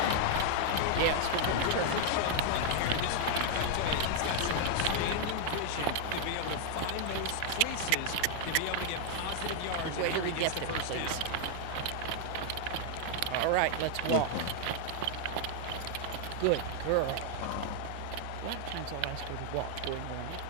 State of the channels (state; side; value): different; both; correlation 0.00